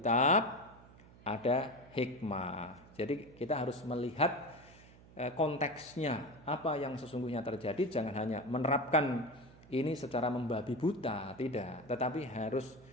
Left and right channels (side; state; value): right; noise; hum, 22 dB below the sound